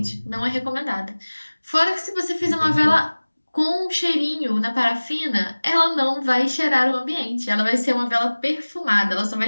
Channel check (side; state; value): both; inverted; correlation -1.00